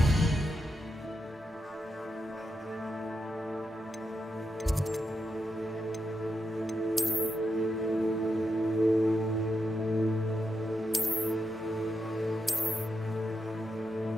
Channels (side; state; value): both; normal; correlation 0.85